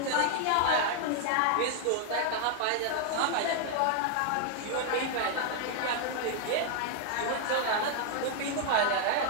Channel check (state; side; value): different; both; correlation 0.00